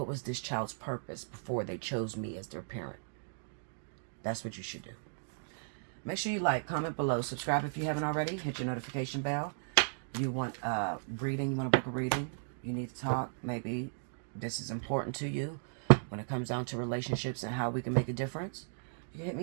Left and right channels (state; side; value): silent; left; digital silence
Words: was this child's purpose before they chose me as their parent? That's what you should do. Make sure you like, comment below, subscribe if you haven't already, hit your notification bell. You want reading, you want to book a reading, you need to talk, maybe this is important to you when it comes down to relationships and how we can make a difference. You can hit